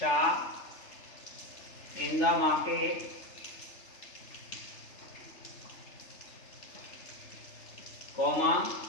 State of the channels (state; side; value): late; right; 3.3 ms